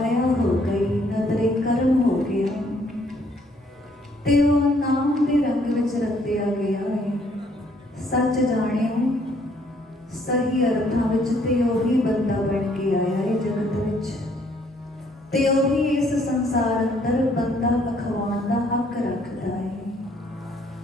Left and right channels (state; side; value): normal; both; correlation 0.65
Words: ਹੋ ਗਈ, ਨਦਰੇ ਕਰਮ ਹੋ ਗਿਆ ਤੇ ਉਹ ਨਾਮ ਦੇ ਰੰਗ ਵਿੱਚ ਰੰਗਿਆ ਗਿਆ ਹੈ। ਸੱਚ ਜਾਣਿਓ, ਸਹੀ ਅਰਥਾਂ ਵਿੱਚ ਤੇ ਉਹੀ ਬੰਦਾ ਬਣ ਕੇ ਆਇਆ ਹੈ ਜਗਤ ਵਿੱਚ, ਤੇ ਉਹੀ ਇਸ ਸੰਸਾਰ ਅੰਦਰ ਬੰਦਾ ਅਖਵਾਉਣ ਦਾ ਹੱਕ ਰੱਖਦਾ ਹੈ।